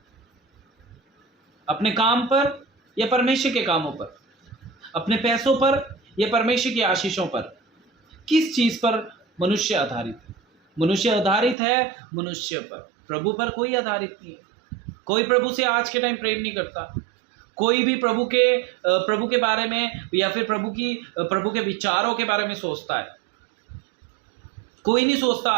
अपने काम पर या परमेश्वर के कामों पर? अपने पैसों पर या परमेश्वर की आशीषों पर? किस चीज पर मनुष्य आधारित है? मनुष्य आधारित है मनुष्य पर, प्रभु पर कोई आधारित नहीं है। कोई प्रभु से आज के टाइम प्रेम नहीं करता। कोई भी प्रभु के बारे में या फिर प्रभु के विचारों के बारे में सोचता है? कोई नहीं सोचता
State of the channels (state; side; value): drops out; left; at 11.6 s